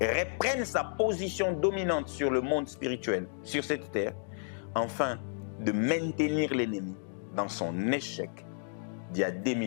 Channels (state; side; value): silent; right; digital silence